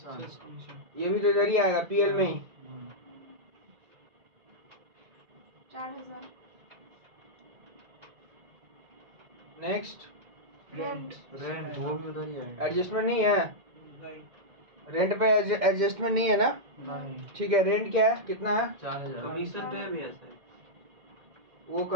ये भी तो इधर ही आएगा पीएल में ही। 4000। नेक्स्ट रेंट, रेंट वो भी उधर ही आएगा, एडजस्टमेंट नहीं है, रेंट पे एडजस्टमेंट नहीं है ना, ठीक है। रेंट क्या है, कितना है 4000, कमीशन पे भी है सर, वो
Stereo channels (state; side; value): late; left; 2.1 ms